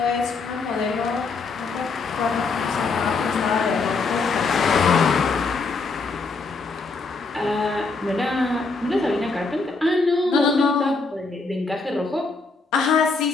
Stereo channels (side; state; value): right; quieter; 4.1 dB